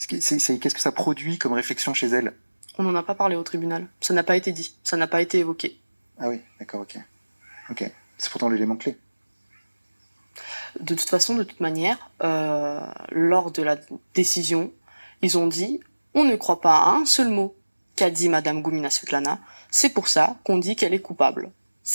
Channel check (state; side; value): inverted; both; correlation -1.00